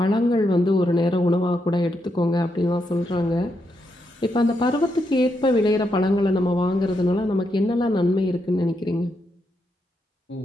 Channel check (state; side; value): normal; both; correlation 0.81